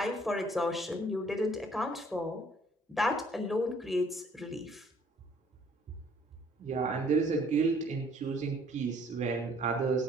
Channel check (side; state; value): both; normal; correlation 0.60